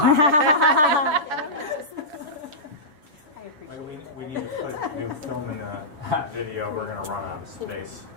We need to put new film in the video. We're going to run out of space.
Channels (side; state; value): left; late; 7.0 ms